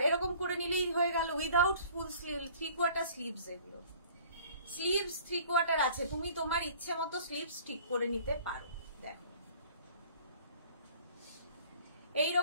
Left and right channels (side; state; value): both; inverted; correlation -0.50